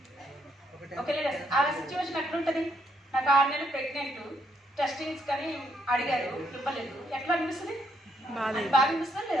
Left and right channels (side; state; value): both; normal; correlation 0.74